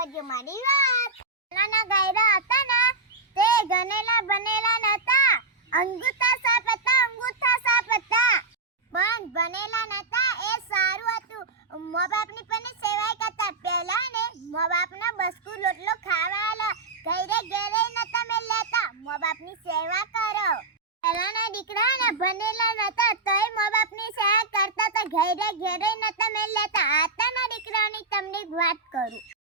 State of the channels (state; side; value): quieter; left; 3.6 dB